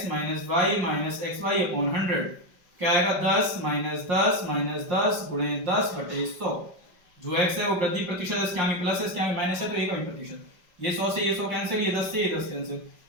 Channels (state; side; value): late; left; 5.6 ms